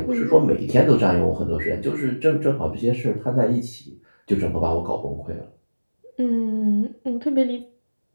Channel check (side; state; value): both; inverted; correlation -1.00